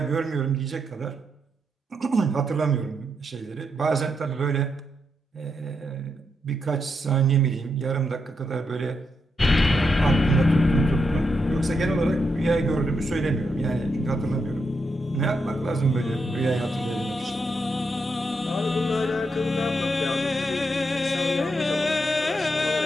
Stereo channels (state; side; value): normal; both; correlation 0.82